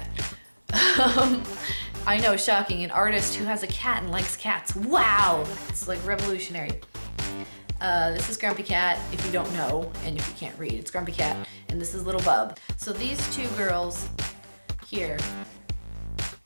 I know, shocking, an artist who has a cat and likes cats. Wow! It's like revolutionary. This is Grumpy Cat, if you don't know, and if you can't read, it's Grumpy Cat, and this is Little Bub. So these two girls here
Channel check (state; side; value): inverted; both; correlation -1.00